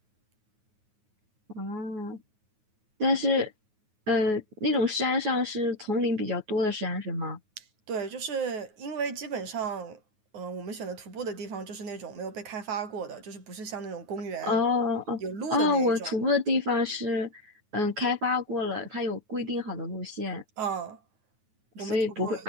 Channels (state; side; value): late; left; 9.4 ms